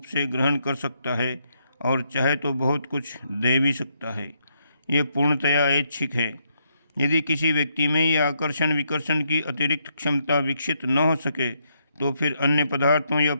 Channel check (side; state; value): both; inverted; correlation -0.76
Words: से ग्रहण कर सकता है और चाहे तो बहुत कुछ दे भी सकता है। ये पूर्णतया ऐच्छिक है। यदि किसी व्यक्ति में ये आकर्षण विकर्षण की अतिरिक्त क्षमता विकसित न हो सके तो फिर अन्य पदार्थों या